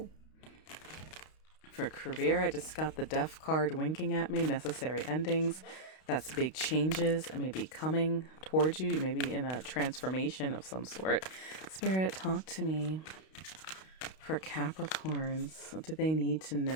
For career, I just got the Death card winking at me. Necessary endings. That's big changes. I may be coming towards you. You may be in a transformation of some sort. Spirit, talk to me. For Capricorns, what do they need to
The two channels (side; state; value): right; late; 32 ms